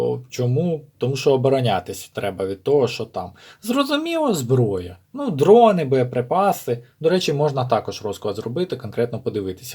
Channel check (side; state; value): both; identical; correlation 1.00